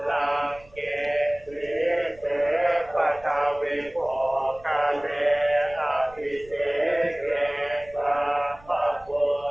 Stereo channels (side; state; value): right; noise; rumble, 24 dB below the sound